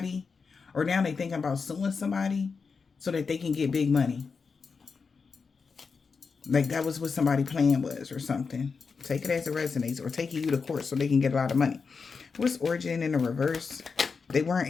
or now they thinking about suing somebody so that they can get big money. Like that was what somebody's plan was or something. Take it as it resonates, or taking you to court so they can get a lot of money. What's origin in the reverse? They weren't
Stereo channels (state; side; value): quieter; right; 5.1 dB